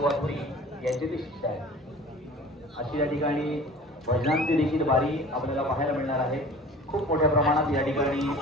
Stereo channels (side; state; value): both; normal; correlation 0.43